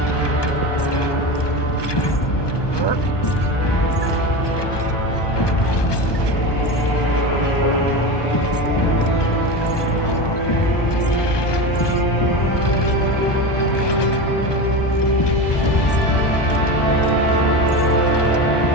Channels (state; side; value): late; right; 1.2 ms